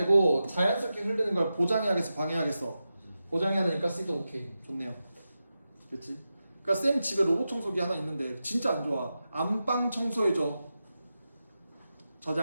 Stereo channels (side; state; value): both; inverted; correlation -0.91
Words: 자연스럽게 흐르는 걸 보장해야겠어, 방해하겠어? 보장해야 되니까 C도 오케이. 좋네요. 그렇지? 그러니까 쌤 집에 로봇 청소기 하나 있는데 진짜 안 좋아. 안방 청소해줘.